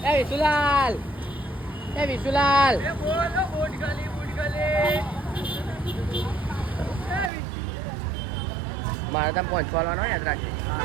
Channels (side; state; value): left; drops out; at 7.3 s